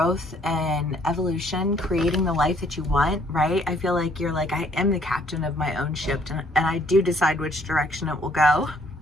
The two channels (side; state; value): both; normal; correlation 0.64